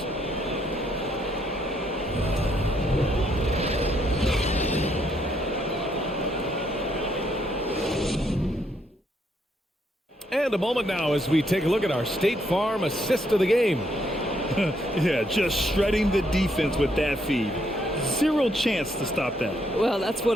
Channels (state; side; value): normal; both; correlation 0.73